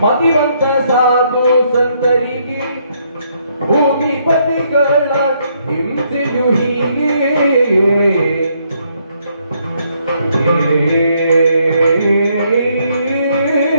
ಮತಿವಂತ ಸಾಧು ಸಂತರಿಗೆ ಭೂಮಿಪತಿಗಳ ಹಿಂಸೆಯು ಹೀಗೆ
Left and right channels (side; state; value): both; inverted; correlation -0.72